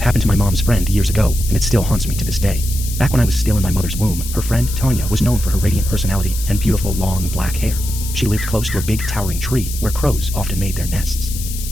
happened to my mom's friend years ago, and it still haunts me to this day. Back when I was still in my mother's womb, her friend Tanya was known for her radiant personality and beautiful long black hair. She lived close to a big towering tree where crows often made their nests.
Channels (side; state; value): left; noise; hiss, 10 dB below the sound